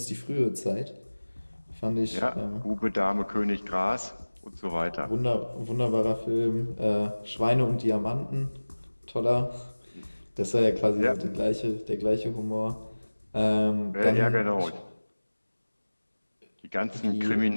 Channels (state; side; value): inverted; both; correlation -1.00